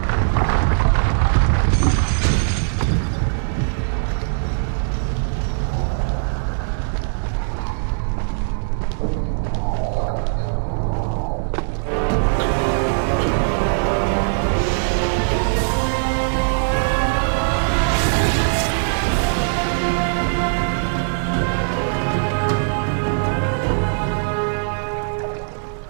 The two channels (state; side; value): silent; left; digital silence